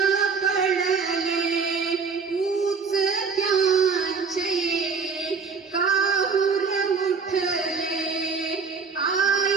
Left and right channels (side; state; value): left; quieter; 5.2 dB